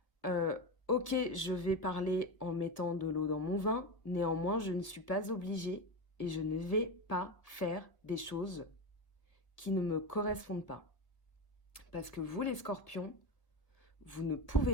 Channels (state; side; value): late; right; 1.0 ms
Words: Ok, je vais parler en mettant de l'eau dans mon vin, néanmoins, je ne suis pas obligée et je ne vais pas faire des choses qui ne me correspondent pas. Parce que vous, les scorpions, vous ne